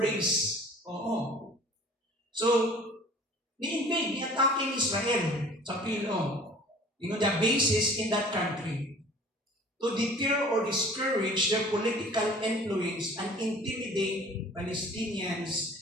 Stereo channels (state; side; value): normal; both; correlation 0.47